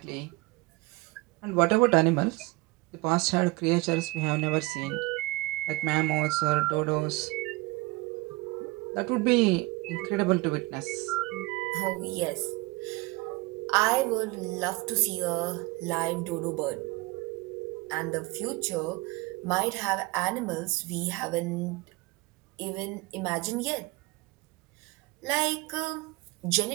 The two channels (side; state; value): left; quieter; 23.3 dB